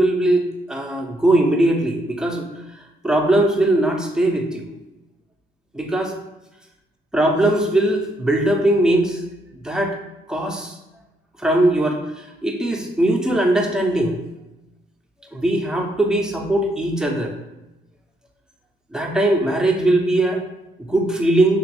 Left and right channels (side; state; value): both; normal; correlation 0.75